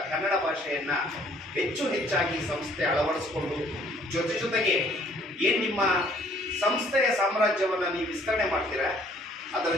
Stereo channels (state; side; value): normal; both; correlation 0.60